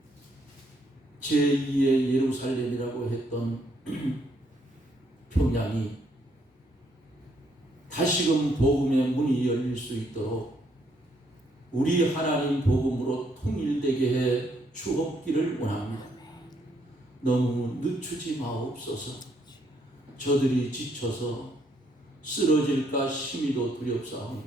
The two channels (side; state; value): both; normal; correlation 0.71